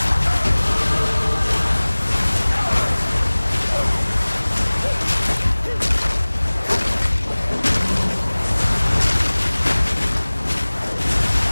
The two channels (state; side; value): inverted; both; correlation -1.00